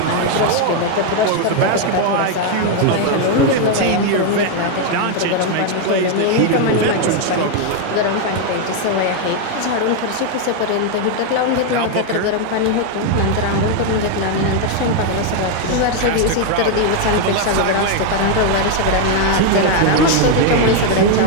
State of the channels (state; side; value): different; both; correlation 0.01